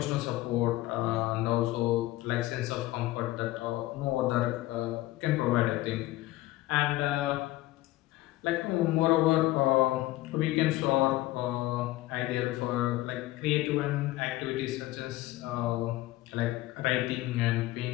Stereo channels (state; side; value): quieter; right; 17.2 dB